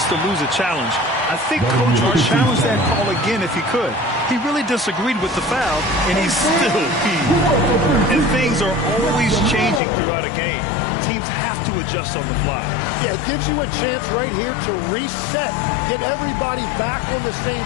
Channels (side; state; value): right; drops out; at 9.8 s